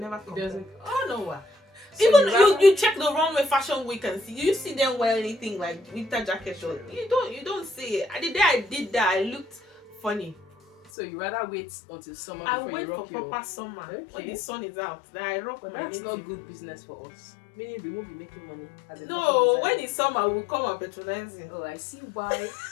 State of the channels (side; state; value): right; drops out; at 10.9 s